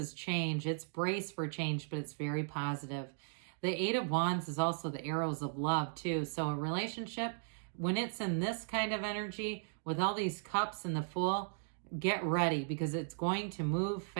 change. It's brace for change, but it's very positive. The Eight of Wands is also the arrows of love too. So a relationship, when it's in this kind of energy with all these cups and the Fool, get ready because it's going to move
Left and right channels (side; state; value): left; silent; digital silence